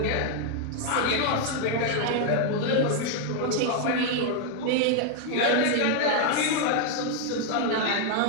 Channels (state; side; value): different; both; correlation 0.00